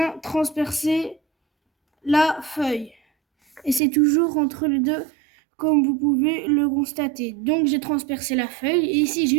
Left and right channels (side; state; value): left; drops out; at 3.8 s